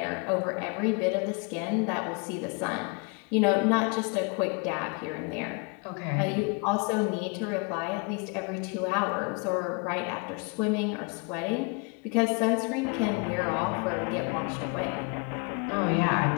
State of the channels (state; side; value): quieter; right; 32.2 dB